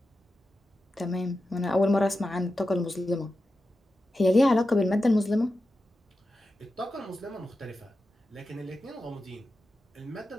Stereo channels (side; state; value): both; normal; correlation 0.91